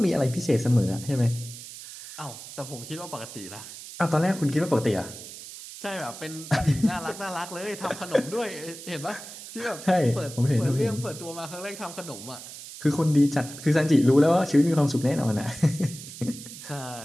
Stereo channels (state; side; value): noise; right; hiss, 13 dB below the sound